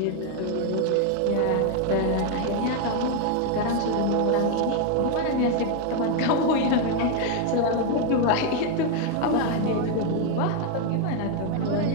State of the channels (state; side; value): different; both; correlation 0.01